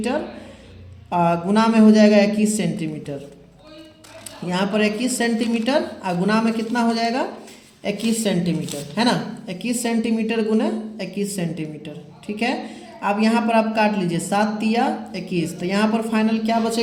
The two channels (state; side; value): identical; both; correlation 1.00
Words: गुना में हो जाएगा 21 सेंटीमीटर। यहाँ पर 21 सेंटीमीटर गुना में कितना हो जाएगा, 21 सेंटीमीटर, है ना। 21 सेंटीमीटर गुना 21 सेंटीमीटर, ठीक है। अब यहाँ पर आप काट लीजिए, 7 तिया 21, तो यहाँ पर फाइनल क्या